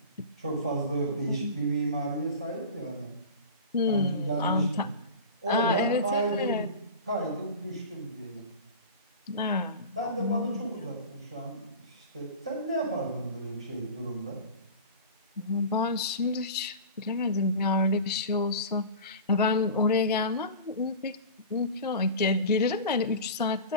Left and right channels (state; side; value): inverted; both; correlation -0.33